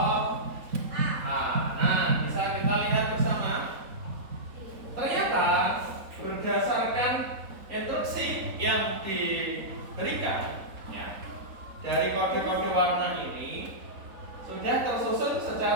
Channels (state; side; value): late; left; 3.9 ms